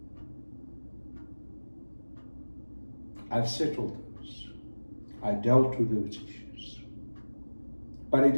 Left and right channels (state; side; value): inverted; both; correlation -1.00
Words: I've settled those. I dealt with those issues. But it